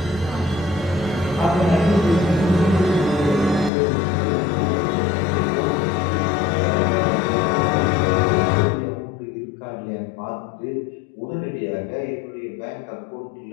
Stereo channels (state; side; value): drops out; right; at 3.7 s